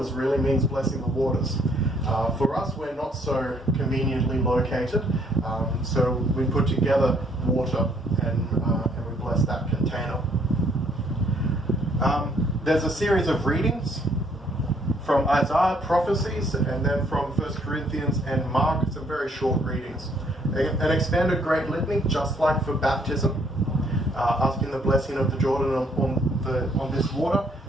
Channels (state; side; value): normal; both; correlation 0.66